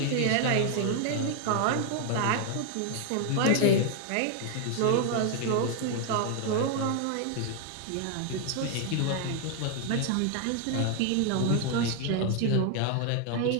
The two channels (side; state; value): both; different; correlation 0.00